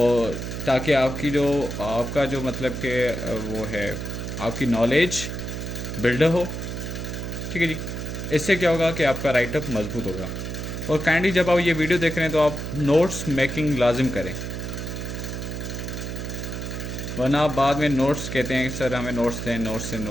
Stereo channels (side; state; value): right; noise; hum, 5 dB below the sound